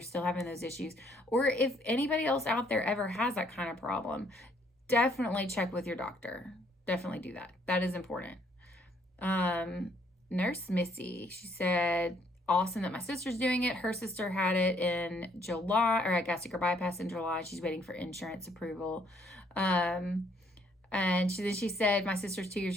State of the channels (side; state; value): both; normal; correlation 0.67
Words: having those issues, or if anybody else out there ever has that kind of problem. definitely check with your doctor. Definitely do that. That is important. Nurse Missy, she said, awesome that my sister's doing it. Her sister had it in July, or I gastric bypass in July. She's waiting for insurance approval. And she said, my sister's 2 years